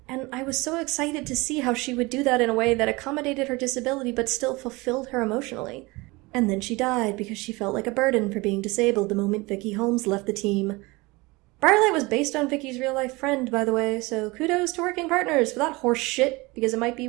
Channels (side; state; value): left; quieter; 23.6 dB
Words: and I was so excited to see how she would do that in a way that accommodated her disability but still fulfilled her emotionally. And then she died because she felt like a burden for being disabled the moment Vicky Holmes left the team. Briarlight was based on Vicky's real-life friend, by the way, so kudos to working partners for that horse shit, because it might be